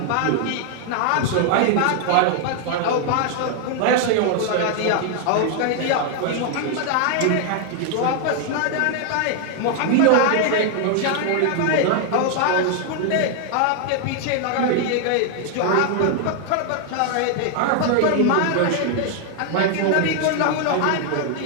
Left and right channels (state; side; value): different; both; correlation 0.00